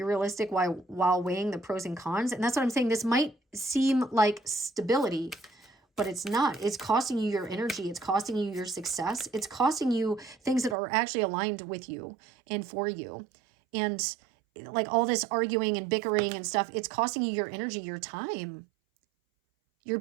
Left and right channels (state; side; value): drops out; left; at 10.8 s